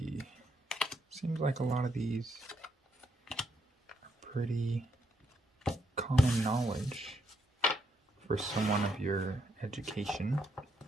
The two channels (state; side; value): normal; both; correlation 0.77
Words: Seems like a lot of these are pretty common knowledge for someone of your education.